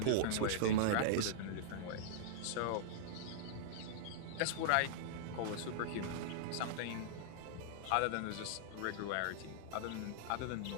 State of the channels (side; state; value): both; different; correlation -0.02